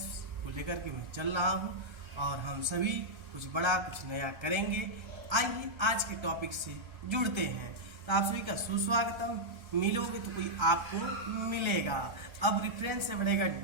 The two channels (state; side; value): late; left; 1.3 ms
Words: को लेकर के मैं चल रहा हूँ और हम सभी कुछ बड़ा कुछ नया करेंगे। आइए आज के टॉपिक से जुड़ते हैं। तो आप सभी का सुस्वागतम। मिलोगे तो कोई आपको मिलेगा। अब रेफरेंस से बढ़ेगा